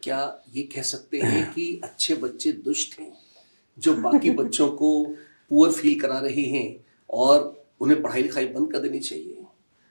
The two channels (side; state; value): both; inverted; correlation -1.00